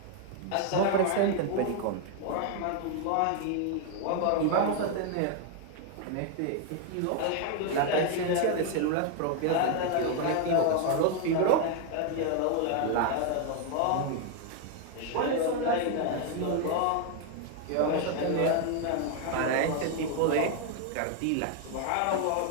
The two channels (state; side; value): different; both; correlation 0.00